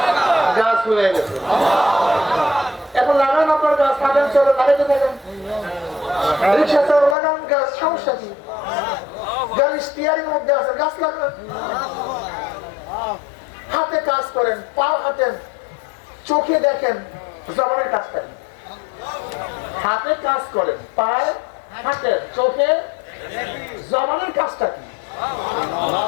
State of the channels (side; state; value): right; drops out; at 7.2 s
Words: গাছ হয়ে গেছে। এখন লাগান আপনার গাছ, লাগান, চলো লাগাইতে থাকেন। রিক্সা চালান, লাগান গাছ, সমস্যা কি? গাড়ি স্টিয়ারিং মধ্যে আছে, গাছ লাগান। হাতে কাজ করেন, পা হাঁটেন, চোখে দেখেন, জবানের কাজ করেন। হাতে কাজ করেন, পায়ে হাঁটেন, চোখে, জবানের কাজটা কি?